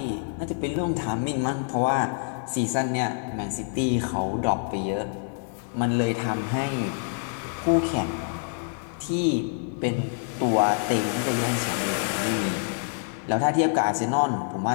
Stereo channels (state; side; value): silent; right; 61 dB below the other